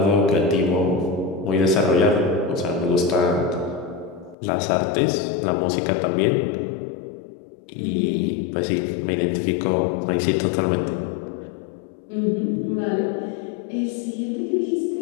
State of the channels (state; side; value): drops out; right; at 4.4 s